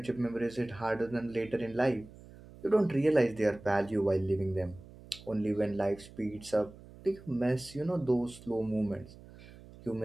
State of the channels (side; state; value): right; noise; hum, 19 dB below the sound